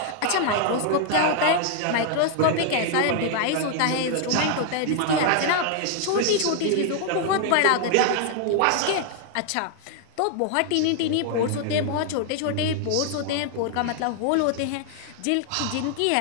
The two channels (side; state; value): both; different; correlation 0.00